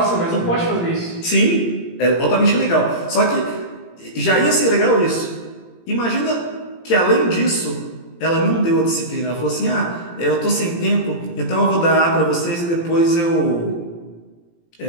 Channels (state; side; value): late; right; 18 ms